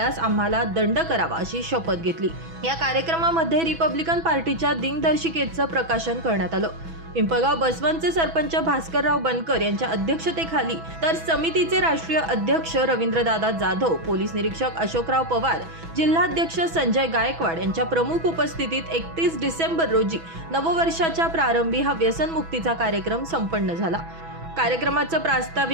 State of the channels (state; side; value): late; left; 6.1 ms